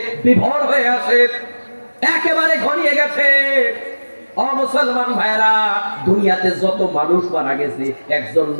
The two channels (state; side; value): inverted; both; correlation -1.00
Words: বিভোর হয়ে আছে। একেবারে ঘনিয়ে গেছে। ও মুসলমান ভাইরা, দুনিয়াতে যত মানুষ মারা গেছে, একজন